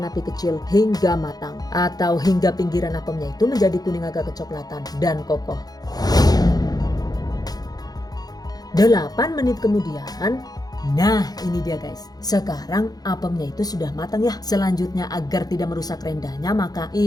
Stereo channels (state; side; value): late; right; 0.19 ms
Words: api kecil hingga matang atau hingga pinggiran apemnya itu menjadi kuning agak kecoklatan dan kokoh. 8 menit kemudian, nah ini dia guys. Sekarang apemnya itu sudah matang ya. Selanjutnya agar tidak merusak rendahnya, maka